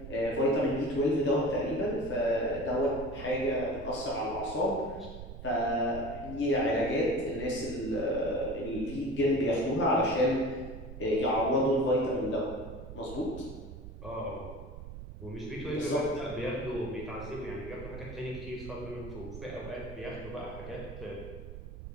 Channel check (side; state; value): right; noise; rumble, 12 dB below the sound